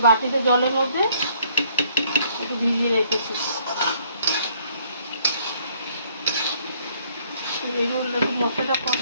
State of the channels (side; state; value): both; inverted; correlation -0.64